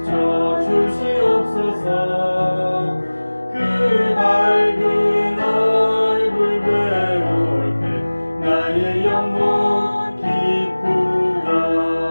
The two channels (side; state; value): both; inverted; correlation -1.00